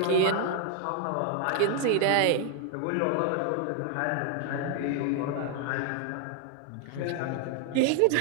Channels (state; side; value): different; both; correlation 0.00